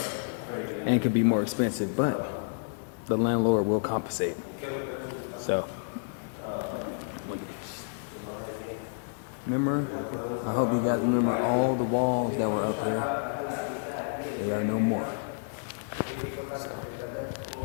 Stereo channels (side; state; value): right; silent; digital silence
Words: and it could be more expensive, but the landlord will compensate. So look at this. Remember, I hope you guys remember all the walls that were up here. They are no more.